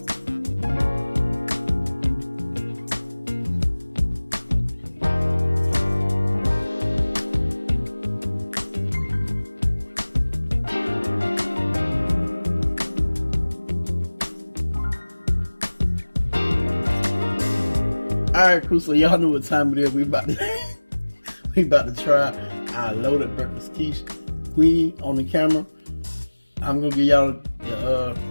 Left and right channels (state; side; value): inverted; both; correlation -1.00